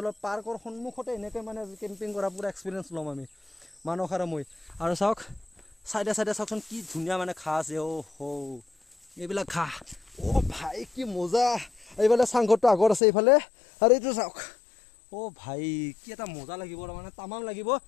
পাৰ্কৰ সন্মুখতে এনেকৈ মানে কেম্পিং কৰা পুৰা এক্সপিৰিয়েঞ্চ ল'ম আমি মানস আৰু মই আৰু চাওক চাইডে চাওকচোন কি ধুনীয়া মানে ঘাঁহ আছে এইবিলাক ঘাঁহ ভাই কি মজা এইফালে চাংঘৰটো আগত আছে এইফালে আৰু এইটো চাওক ভাই কি এটা মজা লাগিব মানে তামাম লাগিব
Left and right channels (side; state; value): right; drops out; at 13.0 s